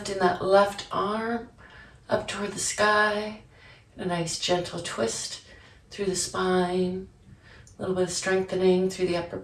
that left arm up toward the sky. A nice gentle twist through the spine. A little bit of strengthening through the upper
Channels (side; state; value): both; identical; correlation 1.00